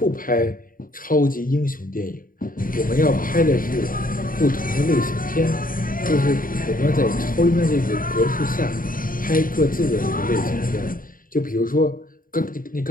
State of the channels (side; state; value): right; late; 0.41 ms